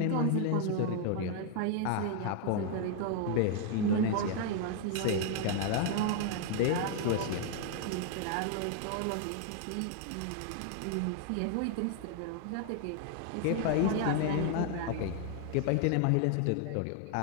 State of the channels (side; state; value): both; different; correlation 0.00